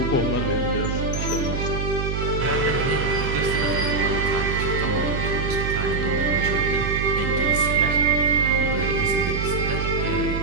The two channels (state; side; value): noise; right; hum, 2 dB below the sound